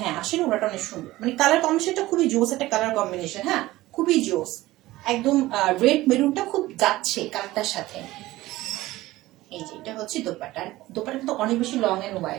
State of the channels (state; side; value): quieter; left; 17.5 dB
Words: হ্যাঁ আসলে ওনাটা অনেক সুন্দর, মানে কালার কম্বিনেশনটা খুবই জোস একটা কালার কম্বিনেশন, হ্যাঁ খুবই জোস, একদম রেড মেরুনটা খুব যাচ্ছে কালারটার সাথে। এই যে এটা হচ্ছে দোপাট্টা, দোপাট্টা কিন্তু অনেক বেশি লং এন্ড